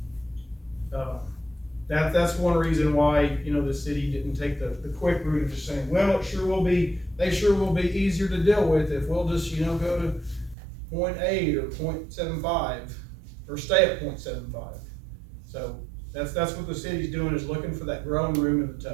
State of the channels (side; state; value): left; drops out; at 10.6 s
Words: that's one reason why, you know, the city didn't take the quick route of just saying, well, they sure will be easier to deal with if we'll just, you know, go to 0.8 or 0.75 or stay at 0.75. So that's what the city's doing, is looking for that growing room in the